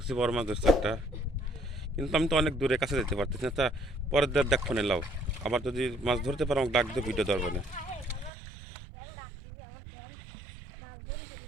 বড় মাছ ধরছো একটা, কিন্তু আমি তো অনেক দূরে কাছে যেতে পারতেছি না। তা পরের দের দেখ ফোনে লাও, আবার যদি মাছ ধরতে পারো আমাকে ডাক দিয়ে ভিডিও ধরবে না।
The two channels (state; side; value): drops out; left; at 8.3 s